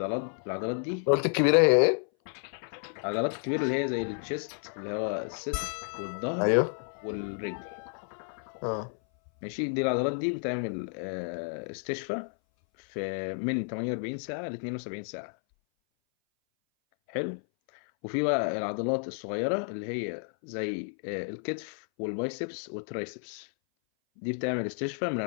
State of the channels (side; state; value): right; silent; 57 dB below the other